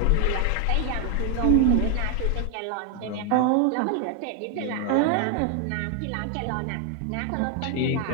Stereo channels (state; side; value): different; both; correlation 0.00